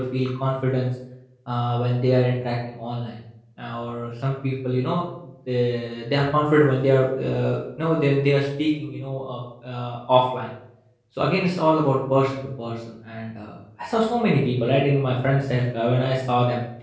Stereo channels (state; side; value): identical; both; correlation 1.00